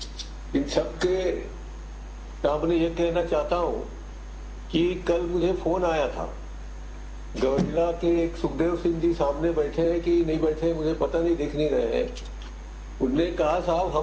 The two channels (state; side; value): identical; both; correlation 1.00